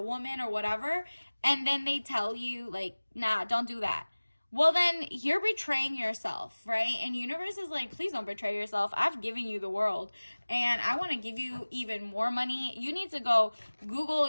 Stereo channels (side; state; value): both; inverted; correlation -1.00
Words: woman or whatever, and then they tell you, like, nah, don't do that. Well, then you're betraying yourself, right? And universe is like, please don't betray yourself. I've given you the world, and I want to give you even more money. You need to go Google